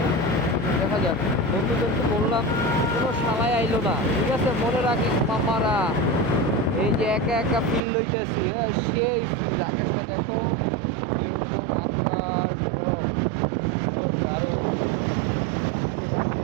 দেখা যাক। বন্ধুদেরকে বললাম, কোনো শালায় আইলো না, ঠিক আছে? মনে রাখিস মামারা, এই যে একা একা ফিল লইতেছি, হ্যাঁ সেই ফিল। আকাশটা দেখো এরকম, আকাশ দারুণ।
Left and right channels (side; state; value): left; drops out; at 7.8 s